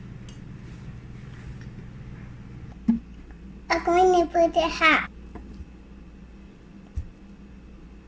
I'm going to put the hat.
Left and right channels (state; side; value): identical; both; correlation 1.00